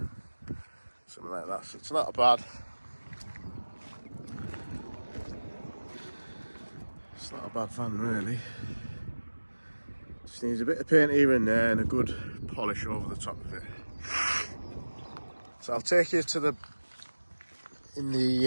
Something like that. So it's not bad. It's not a bad van really. Just needs a bit of paint here and there and a good polish over the top of it. So I'll take you to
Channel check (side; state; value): both; inverted; correlation -1.00